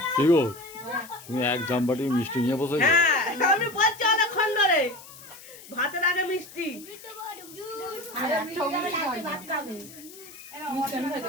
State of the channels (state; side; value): noise; left; hiss, 18 dB below the sound